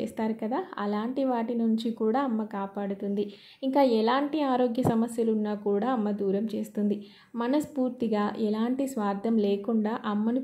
కదా, అలాంటి వాటి నుంచి కూడా అమ్మ కాపాడుతుంది. ఇంకా ఎలాంటి ఆరోగ్య సమస్యలు ఉన్నా కూడా అమ్మ దూరం చేస్తుంది. మనస్ఫూర్తిగా ఎలాంటి స్వార్థం లేకుండా అమ్మను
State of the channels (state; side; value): identical; both; correlation 1.00